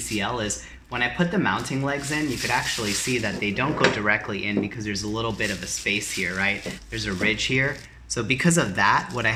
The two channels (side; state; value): both; identical; correlation 1.00